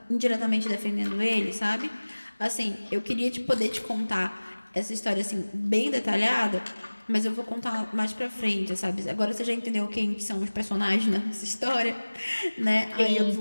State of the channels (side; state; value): both; inverted; correlation -1.00